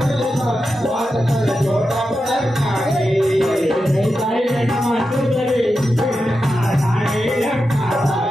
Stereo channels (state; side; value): normal; both; correlation 0.89